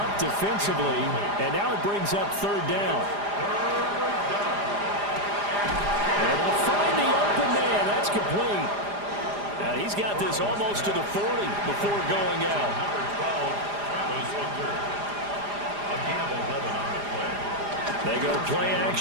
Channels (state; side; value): late; left; 4.9 ms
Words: defensively. And now it brings up 3rd down. And they'll find the open man. That's complete. Now he's got this almost to the 40 before going out. They go play